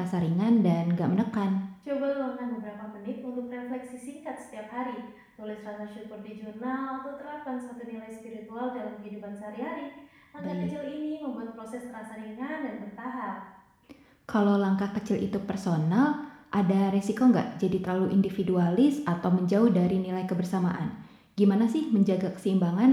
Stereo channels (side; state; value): both; identical; correlation 1.00